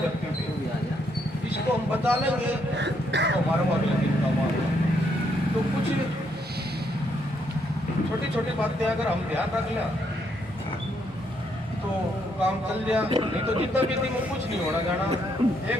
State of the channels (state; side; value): normal; both; correlation 0.74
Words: पे। इसको हम बचा लेंगे तो हमारे अगले दिन का होगा। तो कुछ छोटी छोटी बातें अगर हम ध्यान रख लें तो काम चल जाए, नहीं तो जितना भी दिन में कुछ नहीं होना जाना।